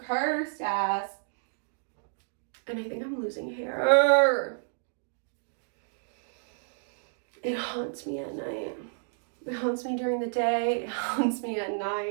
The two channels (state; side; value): silent; left; digital silence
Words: ass. And I think I'm losing hair. It haunts me at night. It haunts me during the day. It haunts me at